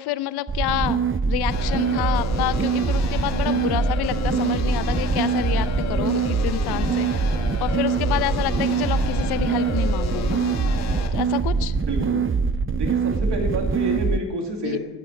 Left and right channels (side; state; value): both; normal; correlation 0.46